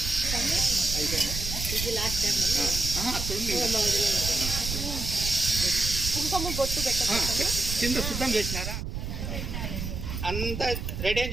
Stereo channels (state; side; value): noise; right; rumble, 4 dB below the sound